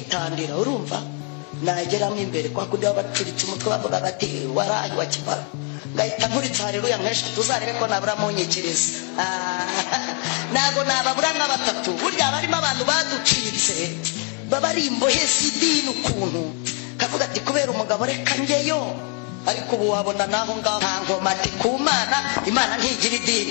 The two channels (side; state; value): right; quieter; 39.3 dB